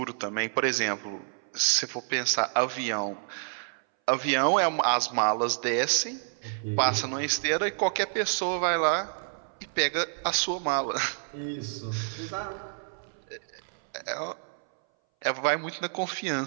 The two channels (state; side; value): silent; left; 59 dB below the other